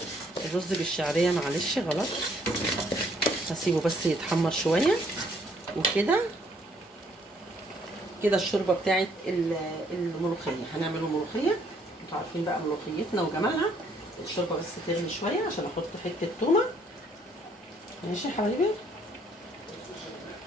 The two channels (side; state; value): both; normal; correlation 0.66